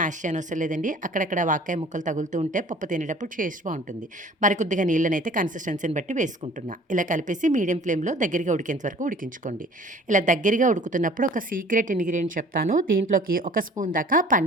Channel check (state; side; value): normal; both; correlation 0.50